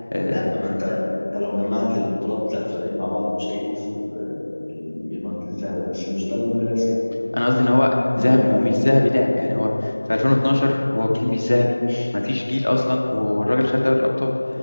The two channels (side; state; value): both; inverted; correlation -1.00